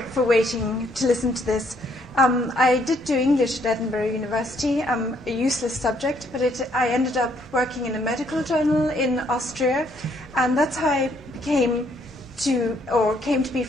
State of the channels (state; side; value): normal; both; correlation 0.68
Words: waiting to listen to this. I did do English at Edinburgh University, a useless subject, but I ended up working in a medical journal in Austria, and that's how I came to be